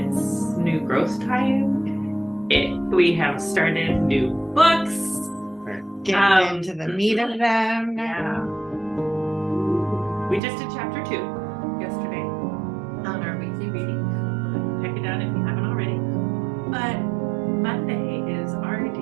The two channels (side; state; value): left; drops out; at 10.4 s